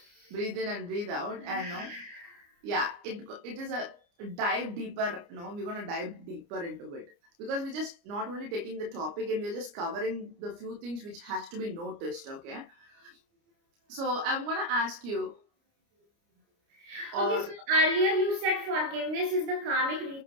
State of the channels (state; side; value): late; left; 29 ms